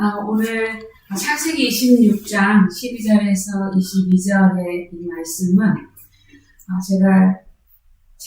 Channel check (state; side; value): identical; both; correlation 1.00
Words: 오늘 창세기 26장 12절에서 22절의 이 말씀은 제가